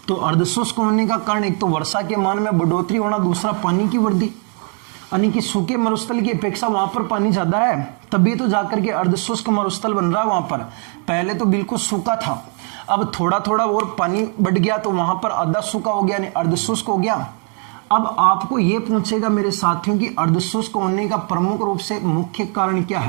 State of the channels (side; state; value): left; quieter; 39.8 dB